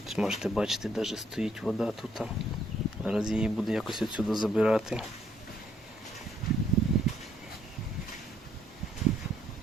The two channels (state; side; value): normal; both; correlation 0.69